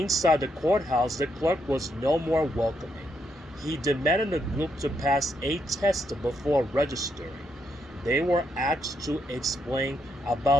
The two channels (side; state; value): both; normal; correlation 0.78